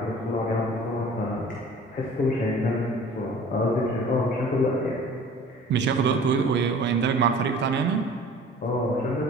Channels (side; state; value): both; normal; correlation 0.46